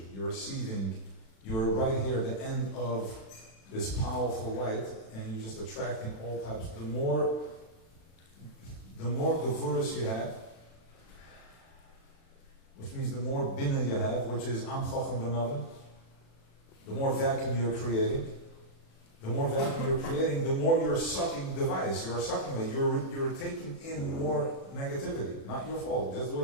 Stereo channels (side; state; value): right; late; 36 ms